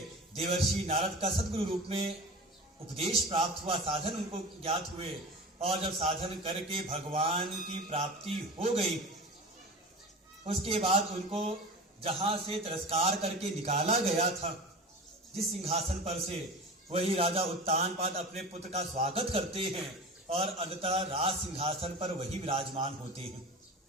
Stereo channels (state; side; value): normal; both; correlation 0.33